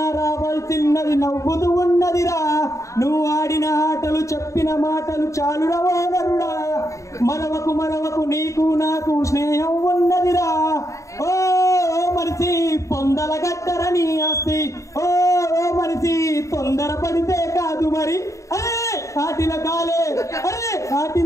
రావాల్సిన్నది నవ్వుతూ ఉన్నదిరా. నువ్వు ఆడిన ఆటలు చెప్పిన మాటలు చాలురా ఓనరుడా, మరవకు మరవకు నీకు నాకు స్నేహం ఉన్నదిరా. ఓ మనిషి పొందల గట్టరని ఆస్తి, ఓ మనిషి తొందర పడితే కాదు మరి. కాటిల కాలే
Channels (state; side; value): late; right; 0.15 ms